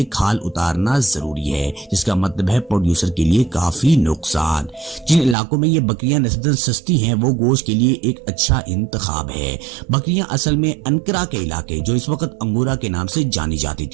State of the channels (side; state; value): left; drops out; at 5.4 s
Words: کھال اتارنا ضروری ہے جس کا مطلب ہے پروڈیوسر کے لیے کافی نقصان۔ جن علاقوں میں یہ بکریاں نسبتاً سستی ہیں وہ گوشت کے لیے ایک اچھا انتخاب ہے۔ بکریاں اصل میں انکرا کے علاقے جو اس وقت انگورا کے نام سے جانی جاتی